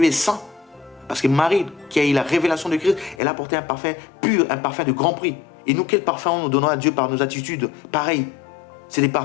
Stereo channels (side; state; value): right; drops out; at 3.2 s